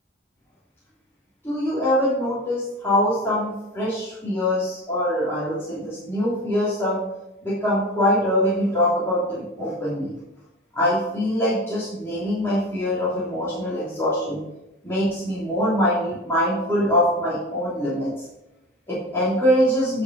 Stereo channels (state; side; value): normal; both; correlation 0.31